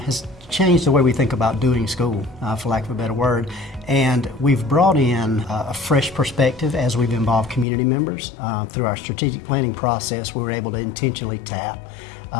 has changed the way we think about doing school, for lack of a better word. And we've brought in a fresh perspective as we've involved community members. Through our strategic planning process, we were able to intentionally tap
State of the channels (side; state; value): right; drops out; at 7.7 s